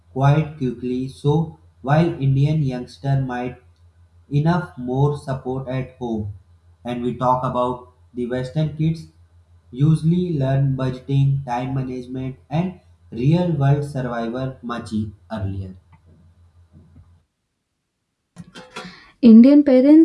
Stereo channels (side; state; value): both; identical; correlation 1.00